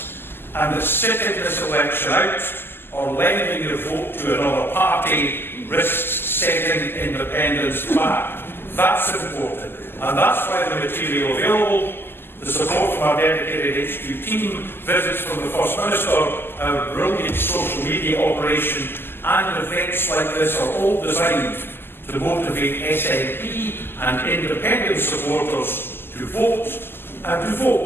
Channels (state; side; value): late; right; 0.11 ms